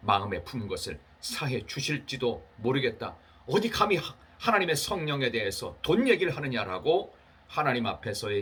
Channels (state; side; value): identical; both; correlation 1.00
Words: 마음에 품은 것을 사해 주실지도 모르겠다. 어디 감히 하나님의 성령에 대해서 돈 얘기를 하느냐라고 하나님